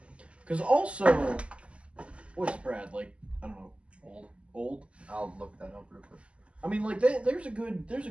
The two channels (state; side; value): late; left; 0.057 ms